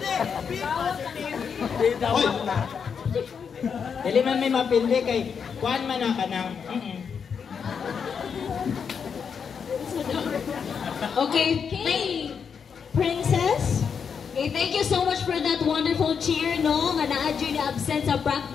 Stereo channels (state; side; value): quieter; right; 6.6 dB